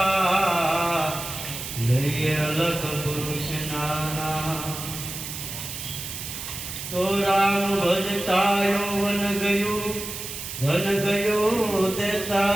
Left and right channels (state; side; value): noise; right; hiss, 8 dB below the sound